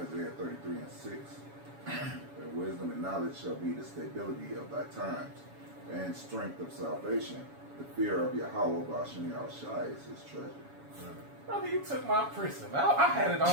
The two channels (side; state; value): left; late; 7.1 ms